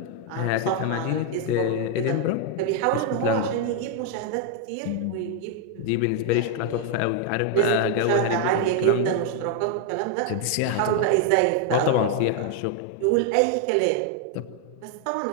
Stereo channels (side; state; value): both; different; correlation 0.00